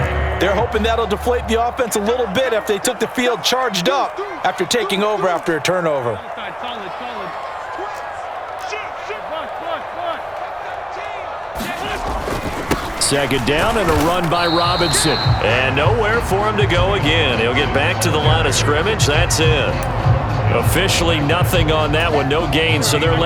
They're hoping that'll deflate the offense a little bit after they took the field charged up after taking over after a turnover. Second down and a run by Robinson. And nowhere for him to go again. He'll get back to the line of scrimmage. That's it. Officially nothing on that one. No gain, so they're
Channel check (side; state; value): both; identical; correlation 1.00